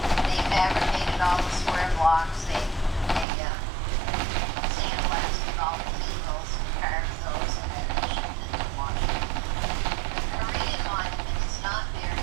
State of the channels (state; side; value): drops out; left; at 3.2 s